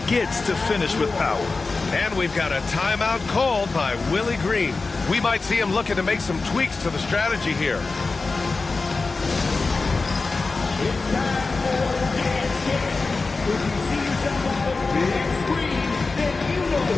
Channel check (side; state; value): right; quieter; 3.9 dB